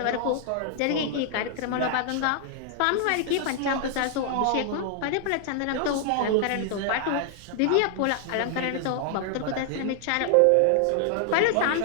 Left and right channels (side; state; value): both; different; correlation 0.00